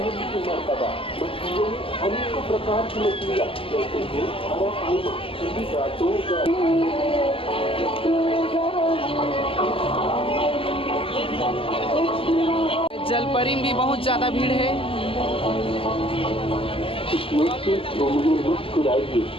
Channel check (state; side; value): late; right; 0.26 ms